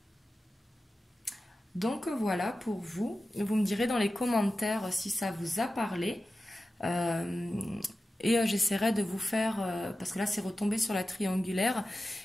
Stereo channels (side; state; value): both; normal; correlation 0.93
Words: Donc voilà pour vous. Vous me direz dans les commentaires si ça vous a parlé. Et j'essaierai de vous faire, parce que là c'est retombé sur la triangulaire,